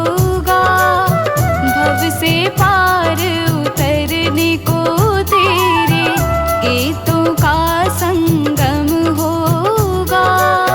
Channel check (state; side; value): identical; both; correlation 1.00